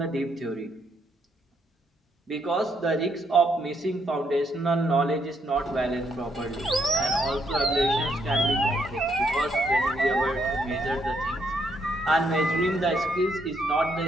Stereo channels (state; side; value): normal; both; correlation 0.74